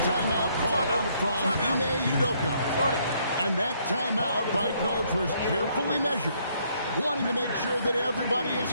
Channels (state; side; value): inverted; both; correlation -0.69